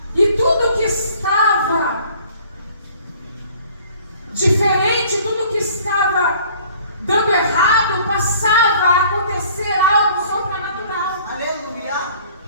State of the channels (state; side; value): inverted; both; correlation -0.53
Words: E tudo que estava diferente, tudo que estava dando errado, passava a acontecer algo sobrenatural. Aleluia.